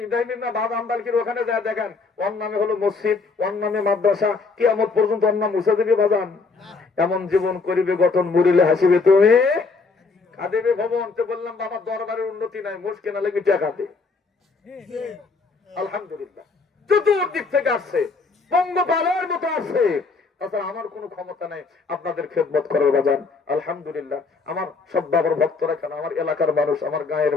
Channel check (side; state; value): right; quieter; 4.3 dB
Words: ইব্রাহিম না বাবা আম্বালকির ওখানে যা দেখেন, ওর নামে হলো মসজিদ, ওর নামে মাদ্রাসা, কিয়ামত পর্যন্ত ওর নাম মুছে দিবে বাজান। এমন জীবন করিবে গঠন, মরিলে হাসিবে তুমি কাঁদিবে ভবন। তো বললাম বাবা দরবারের উন্নতি নাই, মুশকিল না লেগে টাকা দে। আলহামদুলিল্লাহ চতুর্দিক থেকে আসছে, পঙ্গপালের মতো আসছে, তাছাড়া আমার কোনো ক্ষমতা নেই আপনাদের খেদমত করার বাজান। আলহামদুলিল্লাহ আমার সব বাবার ভক্তরা কেন, আমার এলাকার মানুষ, আমার গায়ের